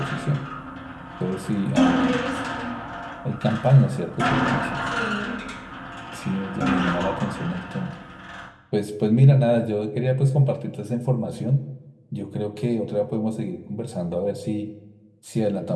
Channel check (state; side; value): identical; both; correlation 1.00